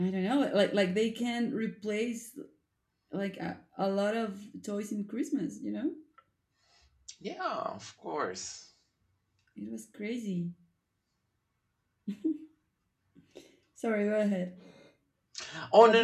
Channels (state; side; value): identical; both; correlation 1.00